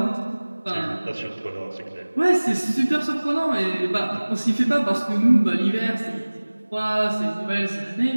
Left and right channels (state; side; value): inverted; both; correlation -1.00